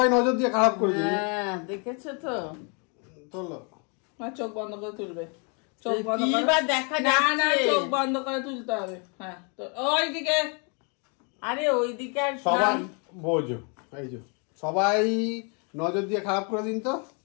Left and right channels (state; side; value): quieter; right; 36.0 dB